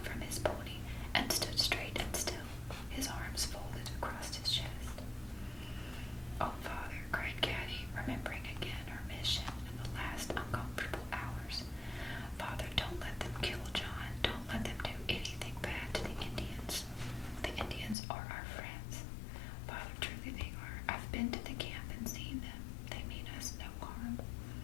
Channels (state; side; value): drops out; right; at 17.9 s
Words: from his pony and stood straight and still, his arms folded across his chest. "Oh, Father," cried Caddie, remembering again her mission in the last uncomfortable hours. "Father, don't let them kill John. Don't let them do anything bad to the Indians. The Indians are our friends. Father, truly they are. I've been to the camp and seen them. They mean us no harm."